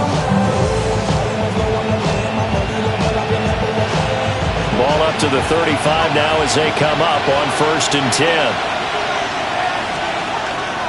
Ball up to the 35 now as they come up on 1st and 10.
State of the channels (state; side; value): identical; both; correlation 1.00